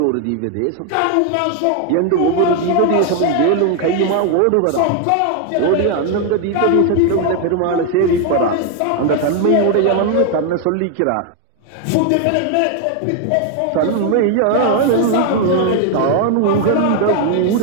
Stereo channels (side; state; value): both; different; correlation 0.00